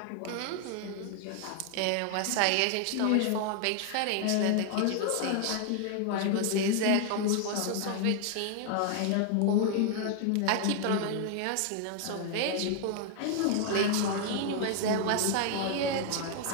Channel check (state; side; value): different; both; correlation 0.00